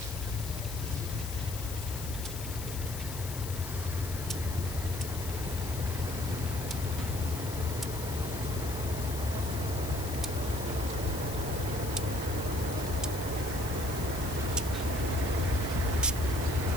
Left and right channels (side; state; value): left; noise; hiss, 9 dB below the sound